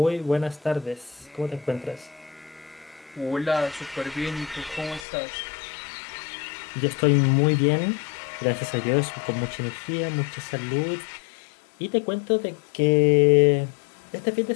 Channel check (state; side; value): drops out; right; at 5.1 s